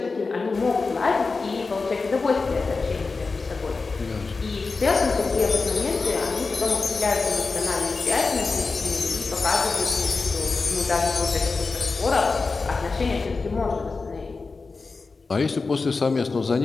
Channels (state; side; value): quieter; right; 4.1 dB